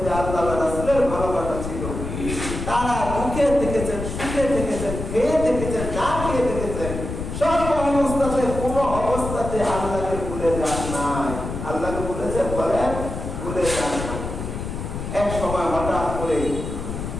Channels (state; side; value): noise; left; rumble, 6 dB below the sound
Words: আল্লাহ রাসূলের ভালোবাসা ছিল। তারা দুঃখে দেখেছেন, সুখে দেখেছেন, খেয়ে দেখেছেন, না খেয়ে দেখেছেন, সর্ব অবস্থাতে কোনো অবস্থাতে আল্লাহকে ভুলে যান নাই। আল্লাহকে ভুলেছে বলেন, ভুলে যান না। এক সময় হঠাৎ করে